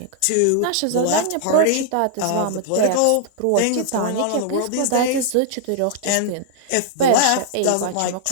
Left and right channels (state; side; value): different; both; correlation -0.01